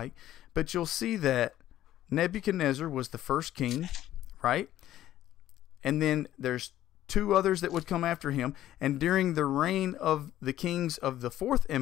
but you'll see that Nebuchadnezzar was the first king, right? And then there's two others that would come after him. And during the reign of the kings of the fourth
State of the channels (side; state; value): right; quieter; 13.1 dB